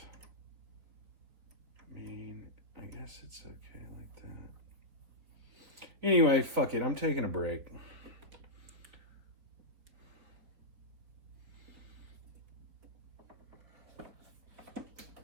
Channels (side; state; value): left; late; 4.4 ms